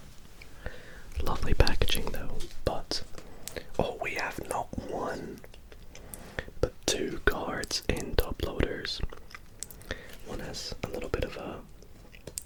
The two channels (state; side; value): identical; both; correlation 1.00